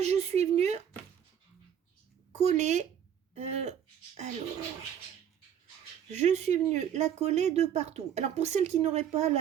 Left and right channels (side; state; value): left; quieter; 9.1 dB